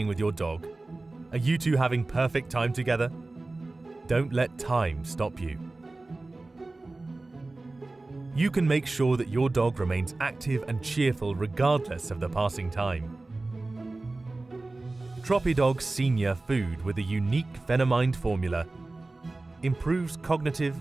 with your dog? Are you two having perfect time together? Don't let time stop you. You can make sure that your dog remains active and cheerful regardless of the passing time. TropiDog SENIOR food with a unique Phenomind formula improves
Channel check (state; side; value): quieter; left; 3.2 dB